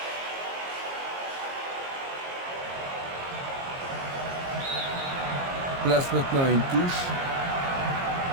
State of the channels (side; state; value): left; late; 22 ms